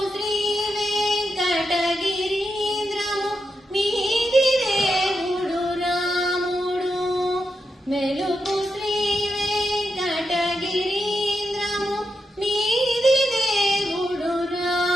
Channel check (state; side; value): normal; both; correlation 0.85